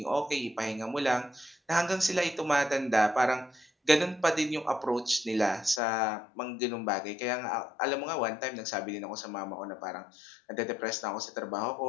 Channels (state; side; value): drops out; right; at 5.8 s